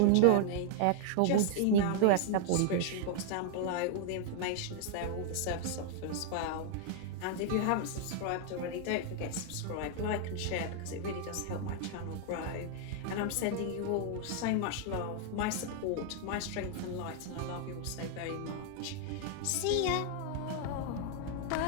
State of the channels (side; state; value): both; different; correlation 0.00